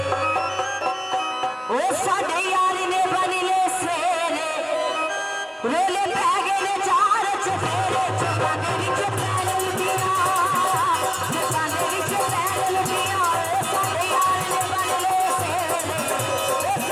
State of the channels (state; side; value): identical; both; correlation 1.00